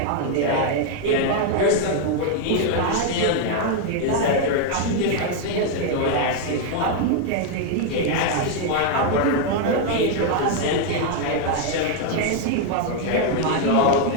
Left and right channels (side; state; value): both; different; correlation 0.00